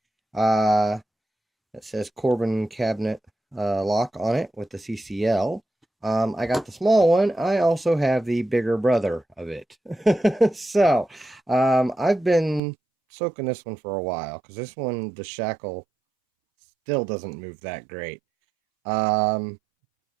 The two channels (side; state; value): left; drops out; at 12.6 s